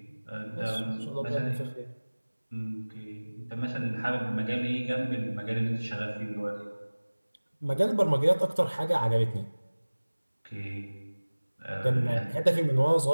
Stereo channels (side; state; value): both; inverted; correlation -1.00